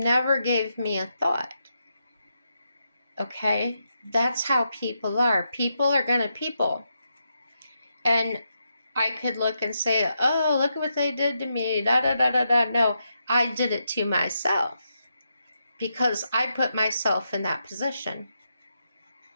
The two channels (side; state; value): both; inverted; correlation -0.83